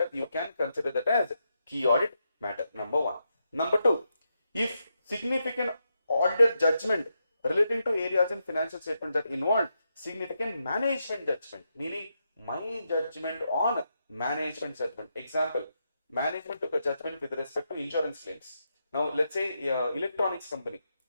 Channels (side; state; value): both; inverted; correlation -0.84